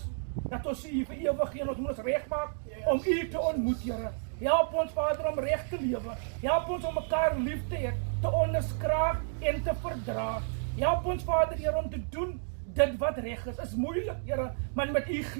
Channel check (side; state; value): left; silent; digital silence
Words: dat ons U vir ewig en ons moet ons regmaak om U te ontmoet Here. Help ons Vader om reg te lewe. Help ons om mekaar lief te hê, te onderskraag en te verdra. Help ons Vader Here om te doen dit wat reg is moeilik Here, maar met U